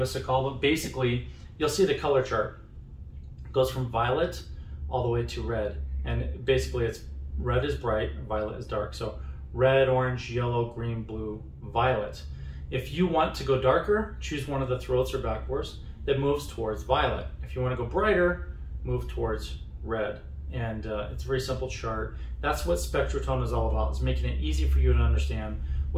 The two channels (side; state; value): both; identical; correlation 1.00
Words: a call. But basically, you'll see the color chart. It goes from violet all the way to red, and basically it's red is bright, violet is dark. So red, orange, yellow, green, blue, violet. If you want to go darker, choose one of the throats or backbores that moves towards violet. If you want to go brighter, move towards red. And it's a very simple chart. That's what SpectraTone is all about, is making it easy for you to understand